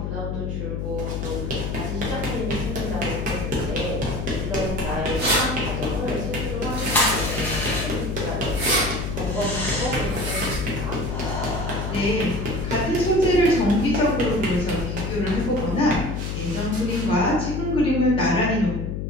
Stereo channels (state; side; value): noise; left; hum, 3 dB below the sound